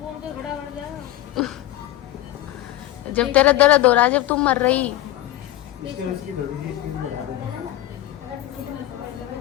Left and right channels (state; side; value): quieter; right; 14.4 dB